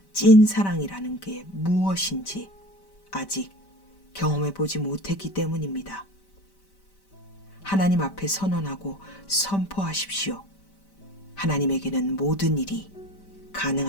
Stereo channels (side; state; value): right; late; 5.1 ms